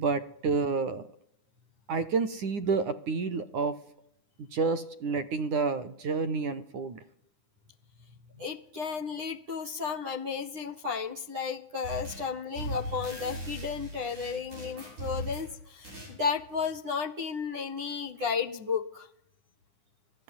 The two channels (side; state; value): left; late; 9.8 ms